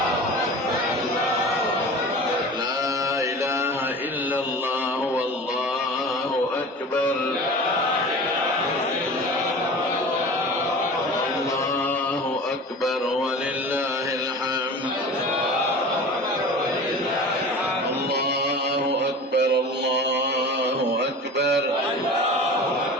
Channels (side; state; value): both; normal; correlation 0.36